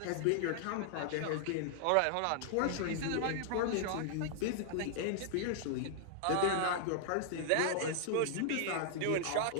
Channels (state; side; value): different; both; correlation -0.01